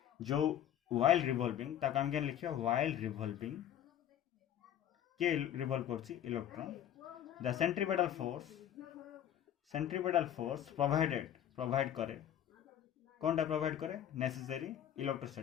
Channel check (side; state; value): right; quieter; 10.6 dB